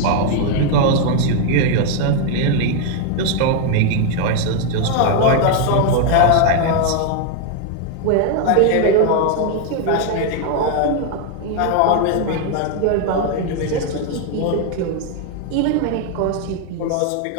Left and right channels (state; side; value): different; both; correlation 0.00